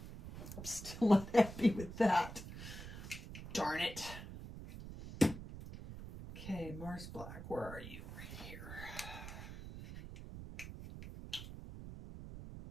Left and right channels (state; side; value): noise; right; rumble, 11 dB below the sound